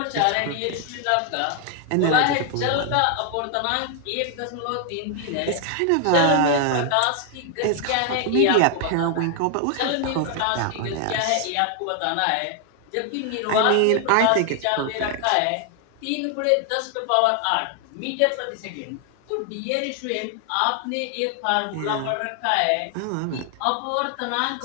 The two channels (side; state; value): both; different; correlation 0.00